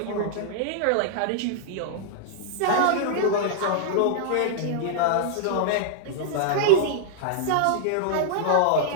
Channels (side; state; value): both; different; correlation -0.01